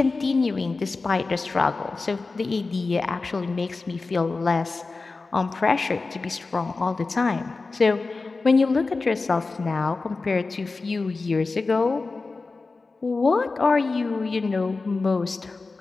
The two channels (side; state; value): right; quieter; 3.8 dB